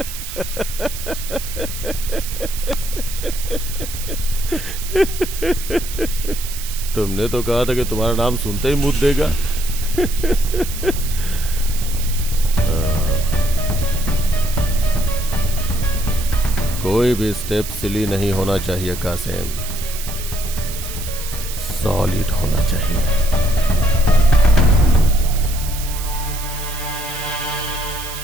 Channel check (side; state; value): right; noise; hiss, 9 dB below the sound